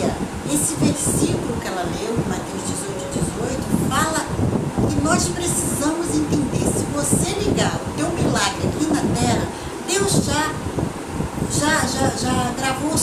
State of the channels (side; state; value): both; identical; correlation 1.00